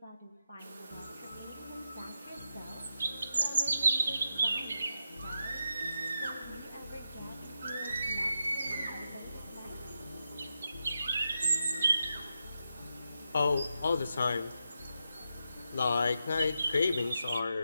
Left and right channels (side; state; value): both; inverted; correlation -0.86